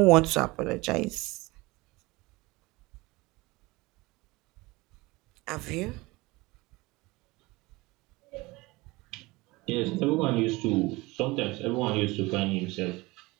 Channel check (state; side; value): quieter; left; 22.2 dB